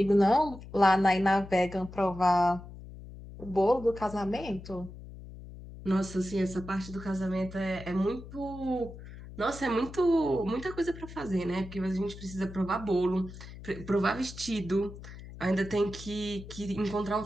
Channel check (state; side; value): noise; left; hum, 14 dB below the sound